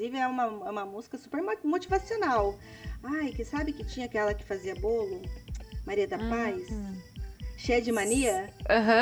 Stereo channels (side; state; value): both; identical; correlation 1.00